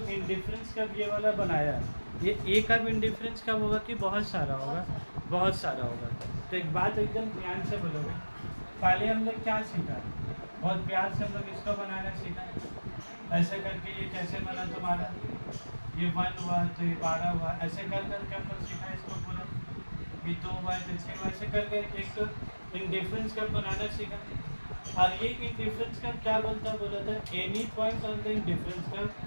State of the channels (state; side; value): inverted; both; correlation -1.00